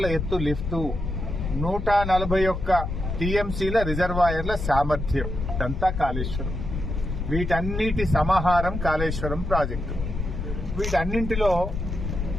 ఎత్తు లిఫ్టు, 141 టీఎంసీల రిజర్వాయర్ల సామర్థ్యం. ఇదంతా కాళేశ్వరం. వీటన్నిటి సమాహారం కాళేశ్వరం ప్రాజెక్టు. వీటన్నింటిలో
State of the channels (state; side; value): noise; left; rumble, 4 dB below the sound